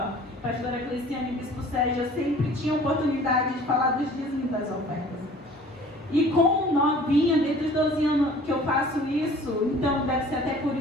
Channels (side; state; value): both; normal; correlation 0.49